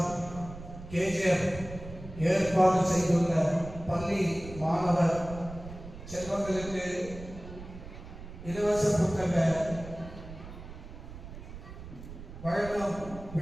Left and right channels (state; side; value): noise; right; rumble, 13 dB below the sound